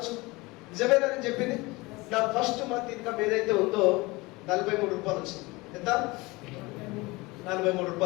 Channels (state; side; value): quieter; right; 23.0 dB